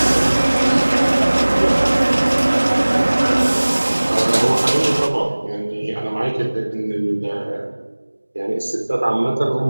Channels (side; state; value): both; inverted; correlation -1.00